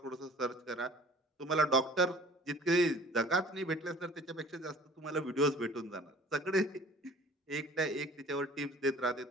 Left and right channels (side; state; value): both; normal; correlation 0.48